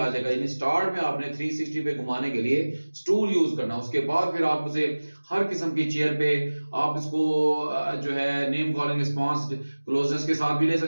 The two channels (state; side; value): inverted; both; correlation -1.00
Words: जाएगा। यानी स्टार्ट में आपने 360 पे घुमाने के लिए स्टूल यूज करना, उसके बाद फिर आप उसे हर किस्म की चेयर पे आप इसको जो है नेम कॉलिंग रिस्पांस क्लोजनेस के साथ भी ले